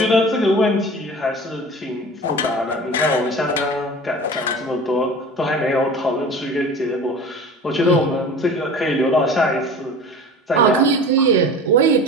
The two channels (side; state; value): both; normal; correlation 0.37